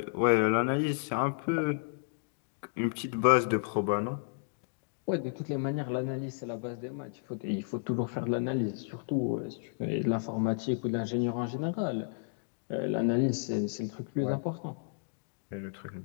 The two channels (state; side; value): silent; right; digital silence